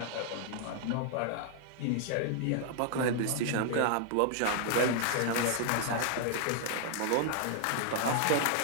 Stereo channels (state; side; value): different; both; correlation 0.00